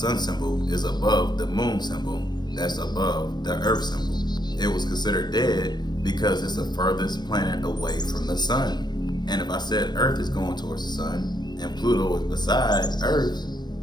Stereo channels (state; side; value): late; right; 0.21 ms